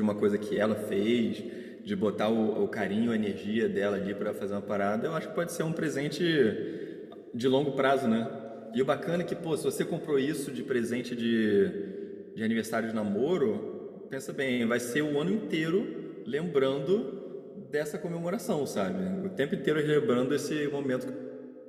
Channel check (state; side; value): identical; both; correlation 1.00